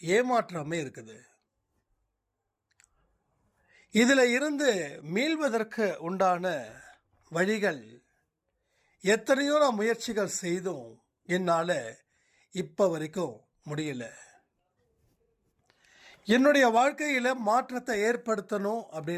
ஏமாற்றமே இருக்குது. இதில் இருந்து மீள்வதற்கு உண்டான வழிகள் எத்தனையோ நான் முயற்சிகள் செய்தும் என்னால் இப்போ வரைக்கும் முடியல. என்னுடைய வாழ்க்கையில் மாற்றத்தை ஏற்படுத்தணும்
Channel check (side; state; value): both; identical; correlation 1.00